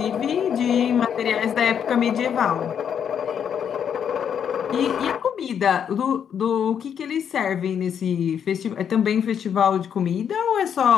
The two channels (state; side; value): quieter; right; 8.2 dB